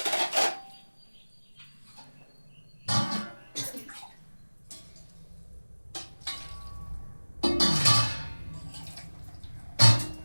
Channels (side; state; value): both; inverted; correlation -1.00